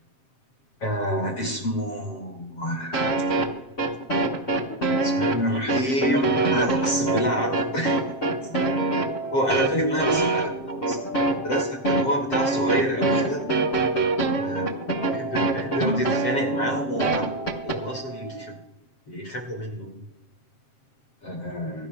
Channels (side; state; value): right; late; 7.5 ms